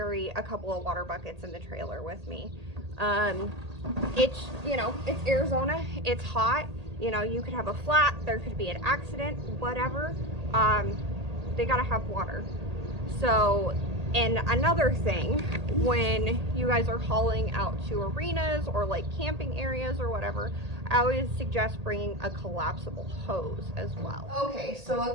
a couple of water buckets in the trailer with me. It's, you know, it's Arizona, it's hot, you know, you could have a flat, there could be an accident, whatever. They gotta have water. So, and another thing, when you guys are hauling out to arenas or like camping areas or whatever, I always suggest bringing a collapsible hose as well. Okay, so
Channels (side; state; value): left; late; 1.8 ms